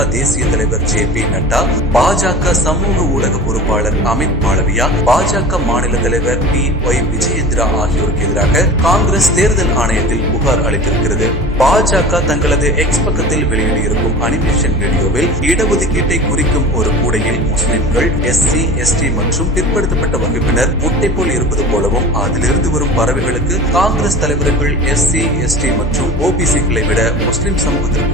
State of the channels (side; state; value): both; normal; correlation 0.36